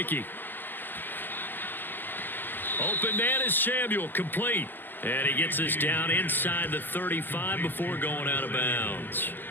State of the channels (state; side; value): late; right; 0.089 ms